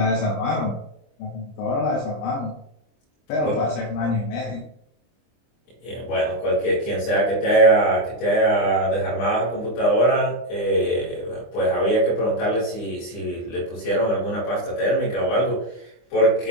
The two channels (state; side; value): late; right; 25 ms